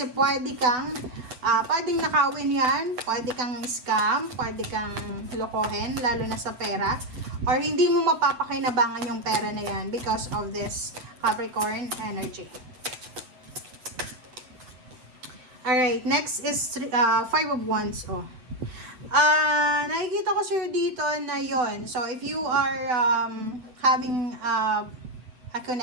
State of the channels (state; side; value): late; left; 7.9 ms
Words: pwedeng nakawin yan, pwede kang scam, pwede kang lokohin, lalo na sa pera, or hindi mo mapapakinabangan yung pera na yan because of this Capricorn energy. Alright, next is 5 of Wands. Nakikita ko sir dito na yon. So, if you are having a